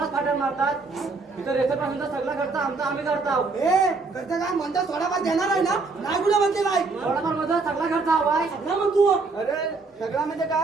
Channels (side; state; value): left; quieter; 4.0 dB